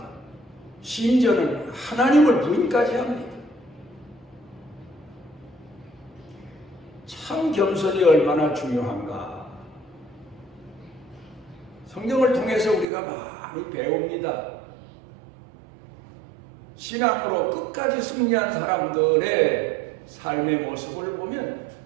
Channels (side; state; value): left; drops out; at 12.9 s